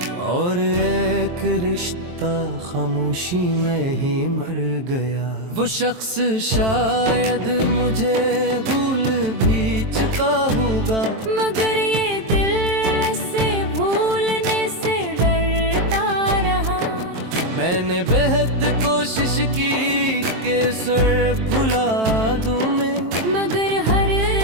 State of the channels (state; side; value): late; left; 23 ms